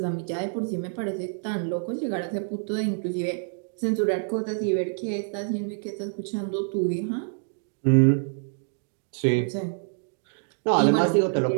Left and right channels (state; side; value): silent; left; digital silence